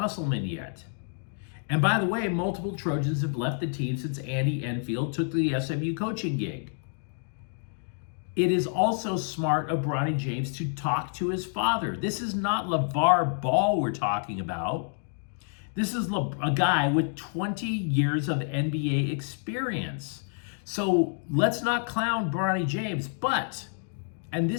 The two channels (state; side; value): silent; right; 59 dB below the other